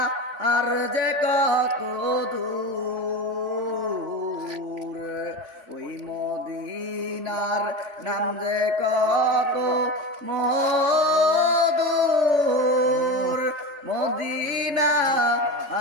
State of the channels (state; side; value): late; left; 3.5 ms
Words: আর যে কত দূর, ওই মদিনার নাম যে কত মধুর, মদিনা